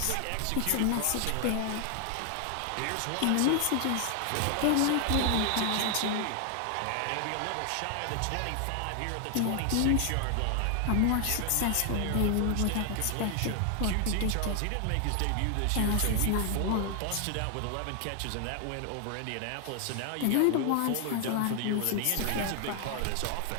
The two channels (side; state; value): both; different; correlation 0.00